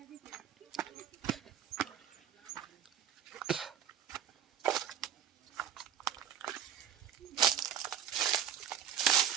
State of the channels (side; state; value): left; quieter; 9.4 dB